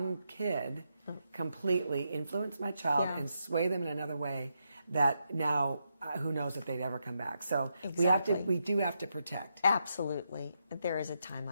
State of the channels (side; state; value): both; inverted; correlation -0.83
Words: kid completely influence my child and sway them in another way that now who knows if they'd ever come back. So we do have to protect. Absolutely. There is a time